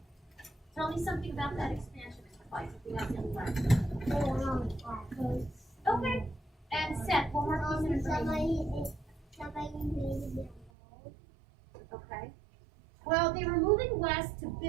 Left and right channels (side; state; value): left; drops out; at 10.7 s